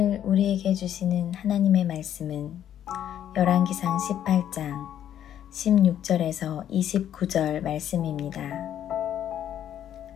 우리에게 주시는 하나님의 말씀은 열왕기상 18장 16절에서 29절 말씀입니다.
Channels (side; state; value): right; quieter; 10.5 dB